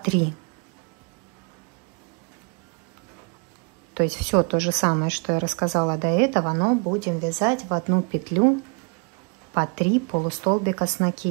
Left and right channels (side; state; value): left; quieter; 36.0 dB